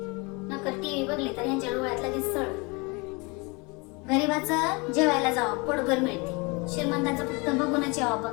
नकर टीव्ही बघली तर यांच्या डोळ्यात लगेच सळ. गरीबाचं जेवायला जावं पोटभर मिळते. श्रीमंताचं फक्त बघूनच यावा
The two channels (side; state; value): right; quieter; 28.4 dB